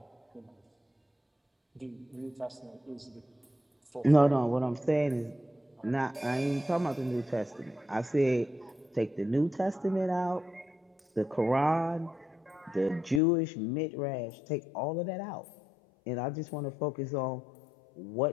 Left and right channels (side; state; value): right; drops out; at 13.2 s